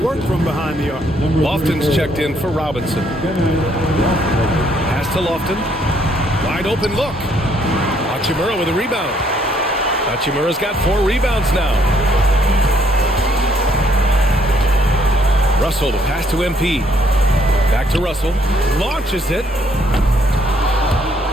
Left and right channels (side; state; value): both; normal; correlation 0.68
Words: from behind the arc. Lofton's checked in for Robinson. Pass to Lofton. Wide open look. Hachimura with a rebound. Hachimura's got 4 rebounds now. Russell to pass to MP. Back to Russell. Launches it.